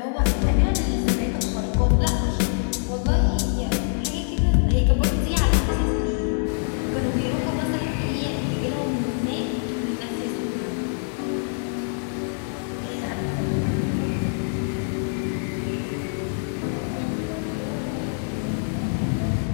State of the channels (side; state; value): right; silent; digital silence